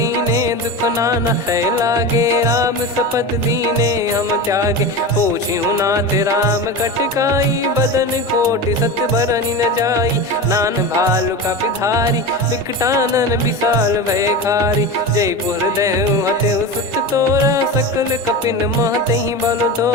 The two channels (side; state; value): both; normal; correlation 0.25